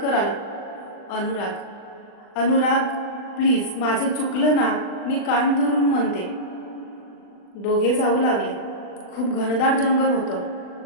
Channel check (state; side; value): late; right; 39 ms